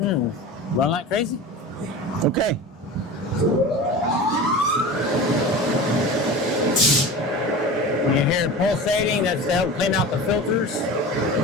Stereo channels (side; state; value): both; normal; correlation 0.33